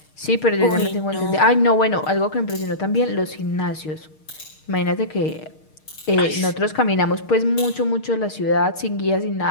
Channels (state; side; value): late; right; 6.5 ms